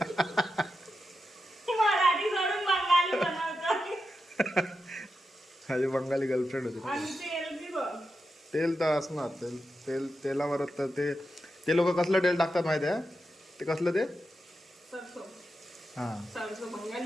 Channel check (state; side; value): normal; both; correlation 0.88